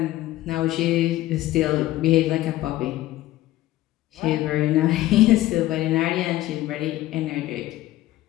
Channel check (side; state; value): right; quieter; 15.7 dB